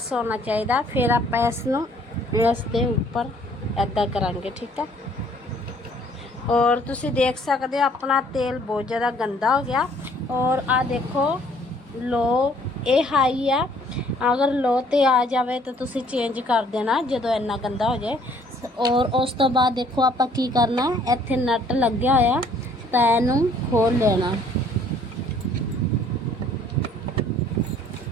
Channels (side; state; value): both; normal; correlation 0.60